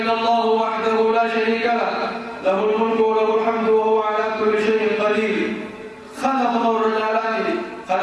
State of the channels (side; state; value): both; identical; correlation 1.00